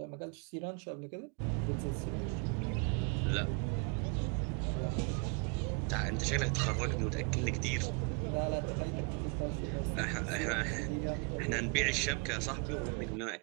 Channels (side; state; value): left; quieter; 34.3 dB